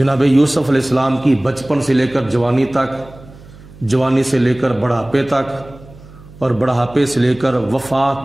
یوسف علیہ السلام کی بچپن سے لے کر جوانی تک، جوانی سے لے کر بڑھاپے تک اور بڑھاپے سے لے کر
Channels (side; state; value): right; noise; hum, 21 dB below the sound